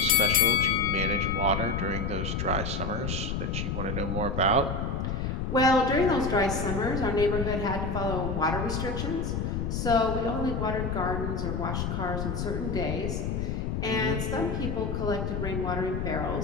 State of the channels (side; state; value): left; noise; rumble, 2 dB below the sound